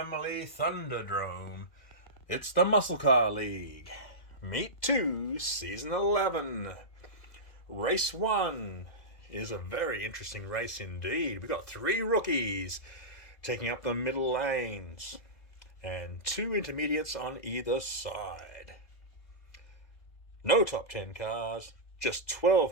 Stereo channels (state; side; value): late; right; 2.0 ms